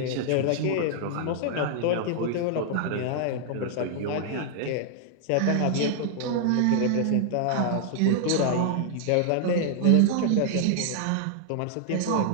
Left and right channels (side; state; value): both; different; correlation 0.00